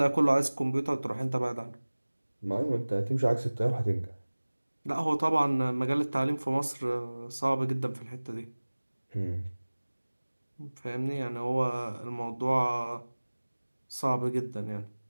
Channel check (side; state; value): both; inverted; correlation -1.00